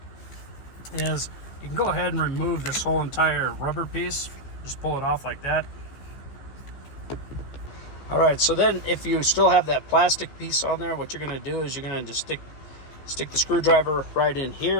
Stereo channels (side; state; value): right; late; 14 ms